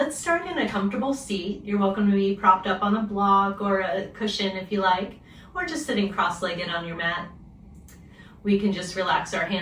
start in a comfortable seat. You're welcome to be propped up on a block or a cushion if you like, or just sitting cross-legged on your mat. We can just relax our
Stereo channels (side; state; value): both; identical; correlation 1.00